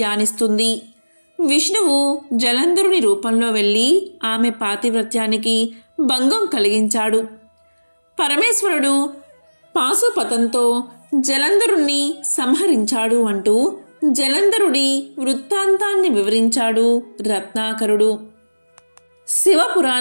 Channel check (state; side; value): inverted; both; correlation -1.00